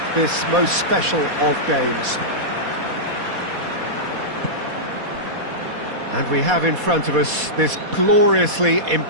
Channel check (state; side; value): late; left; 4.2 ms